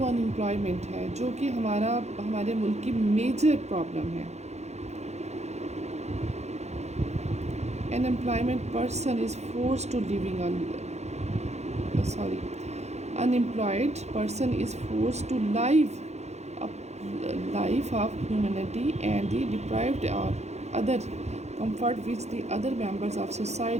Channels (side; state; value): left; late; 0.32 ms